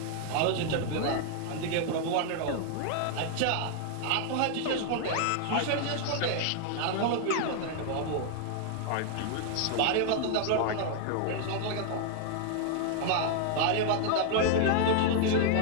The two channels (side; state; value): both; different; correlation 0.00